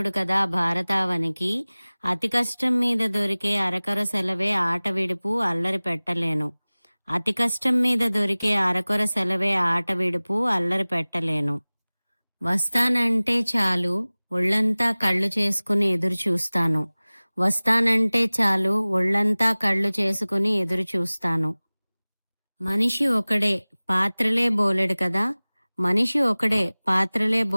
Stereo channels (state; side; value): inverted; both; correlation -0.99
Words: కదా భారతావనికి. అతి కష్టం మీద దొరికే అరకొర సెలవే ఆట విడుపు అల్లరి పెట్టలేను. అతి కష్టం మీద దొరికే అరకొర సెలవే ఆట విడుపు అల్లరి పెట్టలేను. వస్తానంటే చాలు ఒళ్ళంతా కళ్ళు చేసుకుని ఎదురు చూస్తాను. వస్తానంటే చాలు ఒళ్ళంతా కళ్ళు చేసుకుని ఎదురు చూస్తాను. మనిషి ఒకడే పాత్రలే బోలెడు కదా! మనిషి ఒకడే పాత్రలే